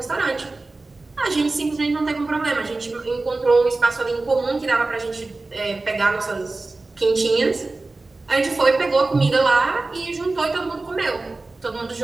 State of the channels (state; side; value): quieter; left; 3.3 dB